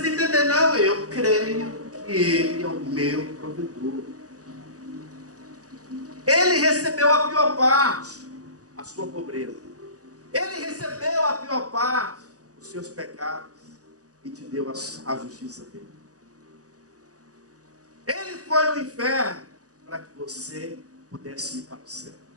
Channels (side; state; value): left; late; 0.67 ms